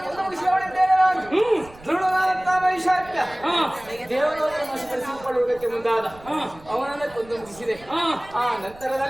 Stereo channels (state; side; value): noise; right; rumble, 22 dB below the sound